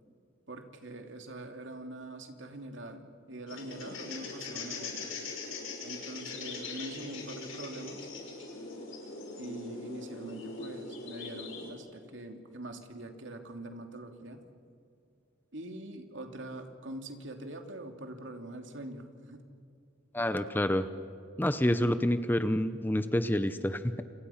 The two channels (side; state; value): both; normal; correlation 0.77